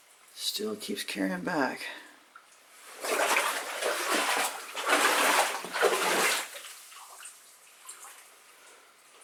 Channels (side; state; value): both; identical; correlation 1.00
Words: Still keeps carrying back.